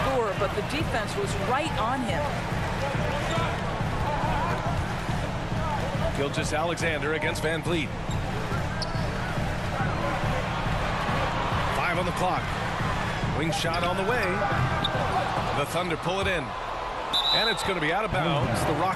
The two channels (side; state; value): both; identical; correlation 1.00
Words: scorer, but the defense was right on him. Gilgeous-Alexander against VanVleet. 5 on the clock. Wing shot on the way. The Thunder pull it in. And it's going to be out of bounds. The